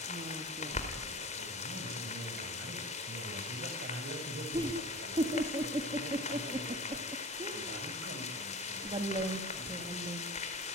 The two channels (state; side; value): normal; both; correlation 0.36